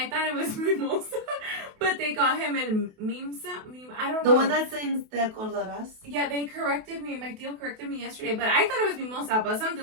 thought it was Mimosa, but they call him El Mimsa. I don't know. The one that sings Te Acordarás. Yeah, they corrected me. My tío corrected me yesterday, but I thought it was Mimosa, but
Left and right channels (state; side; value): late; left; 28 ms